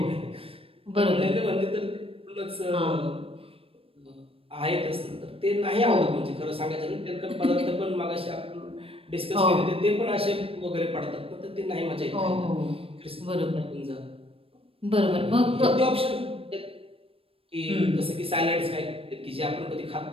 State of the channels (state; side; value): late; left; 0.27 ms